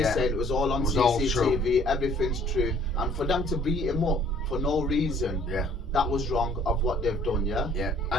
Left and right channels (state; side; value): normal; both; correlation 0.57